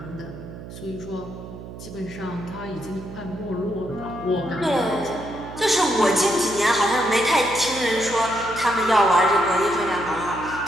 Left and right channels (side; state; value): right; noise; hum, 13 dB below the sound